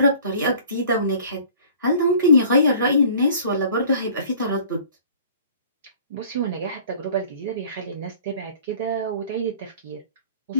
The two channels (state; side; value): inverted; both; correlation -0.48